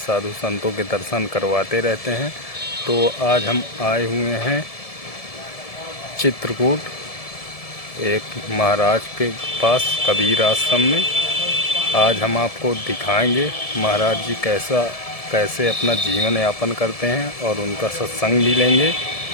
संतों के दर्शन करवाते रहते हैं। तो आज हम आए हुए हैं चित्रकूट, एक महाराज के पास कबीर आश्रम में। आज हम आपको दिखाएंगे महाराज जी कैसे अपना जीवन यापन करते हैं और उनका सत्संग भी लेंगे।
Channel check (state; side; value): late; right; 1.7 ms